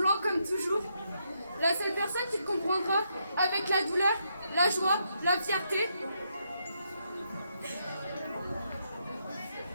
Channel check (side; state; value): both; inverted; correlation -0.79